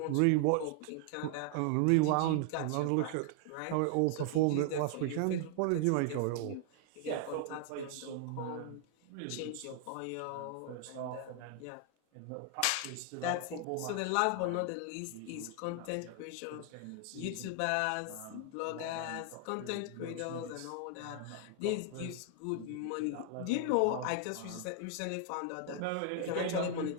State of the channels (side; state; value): both; different; correlation 0.00